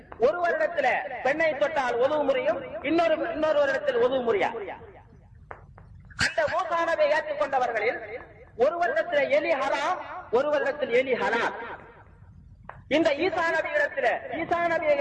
ஒரு வருடத்தில் பெண்ணை தொட்டால் ஒது முறியும், இன்னொரு வருடத்தில் ஒது முறியா. அந்த மூசா நபியை ஏற்றுக்கொண்டவர்களில் ஒரு வருடத்தில் எலி ஹராம், ஒரு வருடத்தில் எலி ஹலால். இந்த ஈசா நபியை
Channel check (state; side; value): identical; both; correlation 1.00